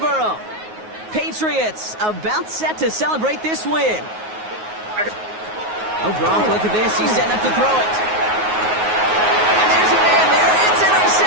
Patriots about set to celebrate this win. Oh, Gronk, look at this. He's setting up to throw it. And there's a man there. It's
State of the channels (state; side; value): late; left; 9.4 ms